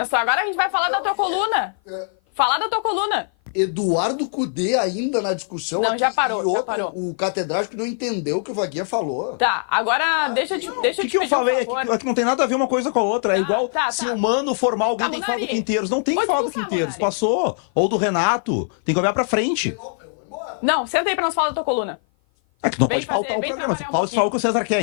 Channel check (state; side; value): silent; right; 55 dB below the other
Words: Agora a gente vai falar da tua coluna. Falar da tua coluna. Eduardo Cudê ainda na discussão. Não, aqui, já parou, e outro, já parou. O catedrático não entendeu o que o Vaguinha falou. Tá, agora deixa eu te O pedir que eu falei um é favor. que não tem nada a ver uma coisa com a outra. É igual se tá. o Mano formar alguém, Tá, tem que falar do Munari. Quinteiros. Não tem que Pode falar do expulsar, Quinteiros. Munari. Passou. Ou do Renato. Tem que olhar pra frente. Não, senta aí pra nós falar da tua coluna. É que não Vem pode faltar fazer, o vem programa. trabalhar um Fala só o que o César quer,